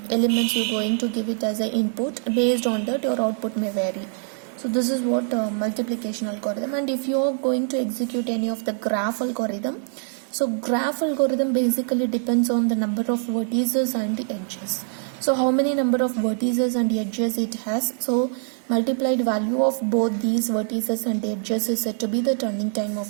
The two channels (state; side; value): silent; left; 63 dB below the other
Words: you're going to give it as an input, based on that your output may vary. So this is what multiplication algorithm. And if you are going to execute any of the graph algorithm, so graph algorithm basically depends on the number of vertices and the edges. So how many number of vertices and edges it has, so multiplied value of both these vertices and edges is said to be the turning time